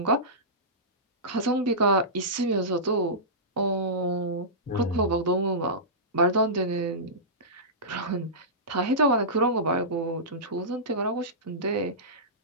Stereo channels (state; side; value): normal; both; correlation -0.18